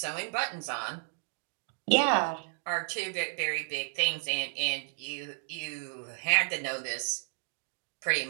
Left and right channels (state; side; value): silent; left; 56 dB below the other